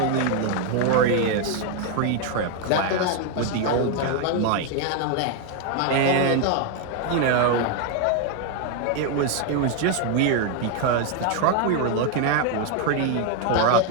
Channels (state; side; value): different; both; correlation 0.01